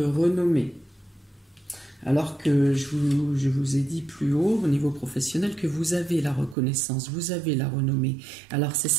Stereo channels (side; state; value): left; drops out; at 6.6 s